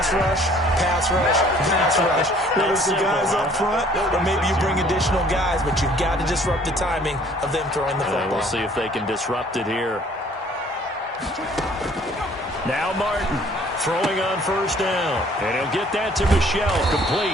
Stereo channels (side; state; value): both; normal; correlation 0.57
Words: rush, pass rush, pass rush. Whether it's the guys up front, or maybe you bring additional guys, but you've got to disrupt the timing of them throwing the football. We'll see if they can disrupt it here. Now Martin throwing on first down. And he'll get that to Michel,